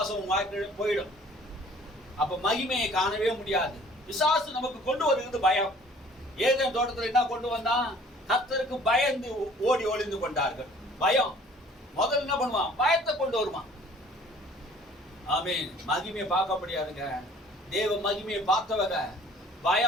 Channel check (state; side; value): normal; both; correlation 0.53